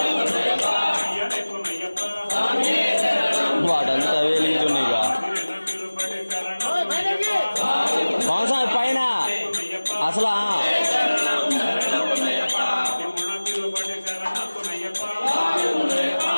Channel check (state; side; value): inverted; both; correlation -1.00